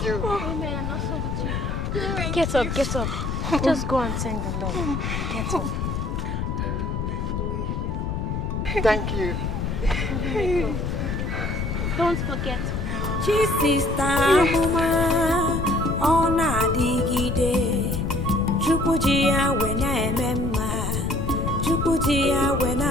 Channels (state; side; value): noise; left; rumble, 2 dB below the sound